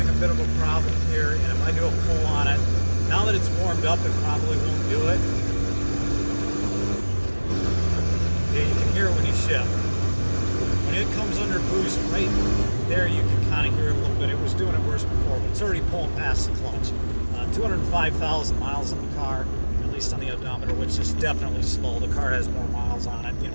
a bit of a problem here, and if I do a pull on it, now that it's warmed up, it probably won't do it. Yeah, you can hear it when you shift. When it comes under boost, right there, you can kind of hear it a little bit. It was doing it worse before, but it's already pulling past the clutch. 205,000 miles on the car, at least on the odometer, which is definitely slow. The car has more miles on it,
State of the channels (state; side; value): inverted; both; correlation -1.00